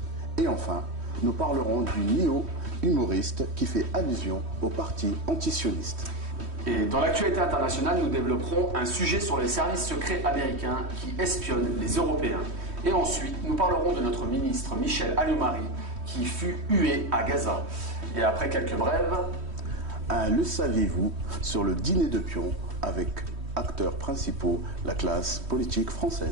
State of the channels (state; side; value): late; left; 3.1 ms